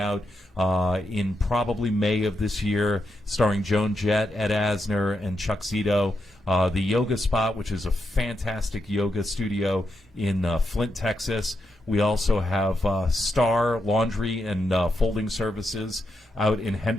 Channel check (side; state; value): both; normal; correlation 0.84